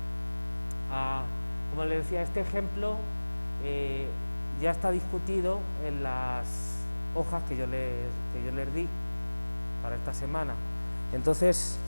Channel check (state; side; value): inverted; both; correlation -1.00